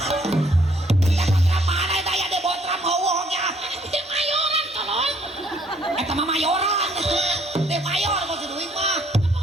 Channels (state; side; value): normal; both; correlation 0.64